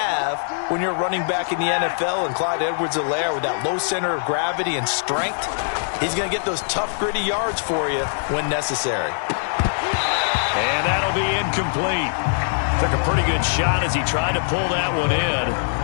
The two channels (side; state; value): right; silent; 59 dB below the other